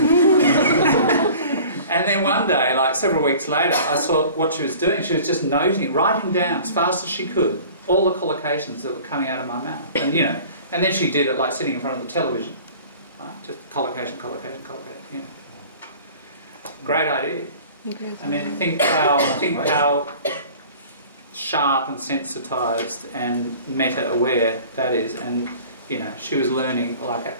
And then one day, like several weeks later, I saw what she was doing. She was just noting, writing down as fast as she could, all the collocations that were coming out of my mouth. And, you know, and then she did it like sitting in front of the television. Right? Just collocation, collocation, collocation, you know. Great idea. I mean, think how sharp and sensitised and meta-aware that is. And you know, she was learning like at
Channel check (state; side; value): inverted; both; correlation -0.45